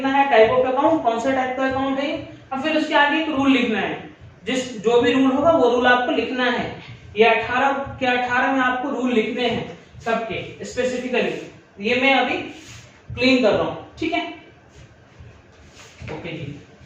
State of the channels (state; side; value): identical; both; correlation 1.00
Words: है, टाइप ऑफ अकाउंट, कौन सा टाइप का अकाउंट है, और फिर उसके आगे एक रूल लिखना है, जो भी रूल होगा वो रूल आपको लिखना है। ये 18 के 18 में आपको रूल लिखने हैं सबके स्पेसिफिकली। ये मैं अभी क्लीन कर रहा हूं, ठीक है? ओके जी।